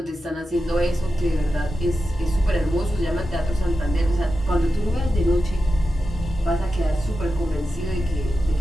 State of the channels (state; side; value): normal; both; correlation 0.91